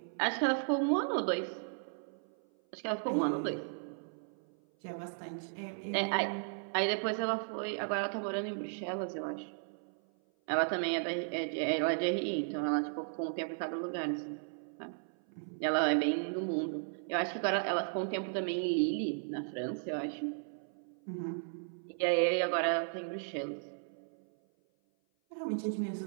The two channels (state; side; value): silent; left; 54 dB below the other